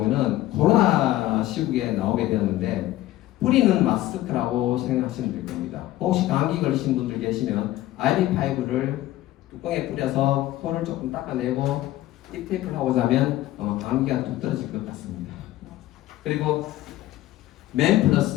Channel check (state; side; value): quieter; right; 15.4 dB